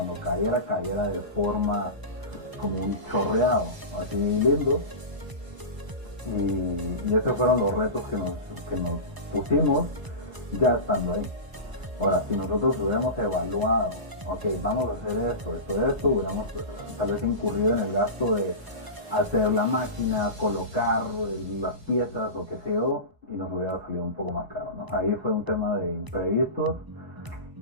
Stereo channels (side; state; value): left; late; 1.0 ms